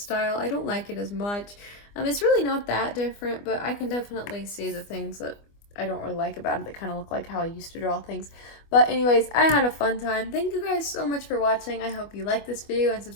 I don't like it as much. It's really not that different, but I can definitely see the things that I don't really like about it that kind of look like how I used to draw things. But anyways, I had a fun time. Thank you guys so much for watching. I hope you liked this video and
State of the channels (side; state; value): right; late; 25 ms